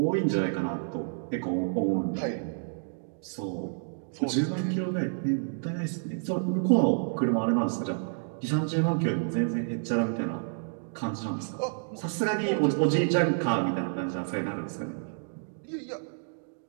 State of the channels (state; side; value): silent; left; digital silence